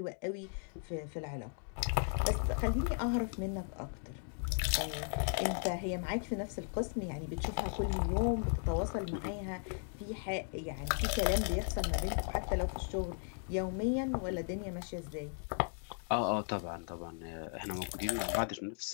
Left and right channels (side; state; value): right; silent; 53 dB below the other